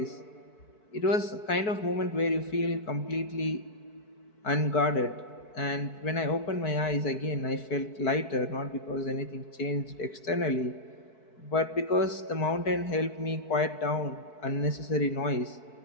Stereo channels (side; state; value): right; late; 4.6 ms